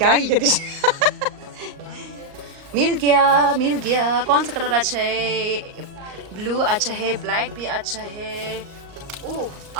मिल गया। कौन सा कलर अच्छा है? ब्लू अच्छा है, ब्लैक भी अच्छा है। ओह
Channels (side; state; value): left; late; 38 ms